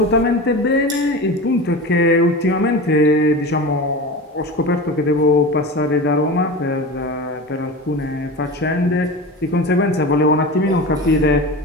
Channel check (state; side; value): normal; both; correlation 0.29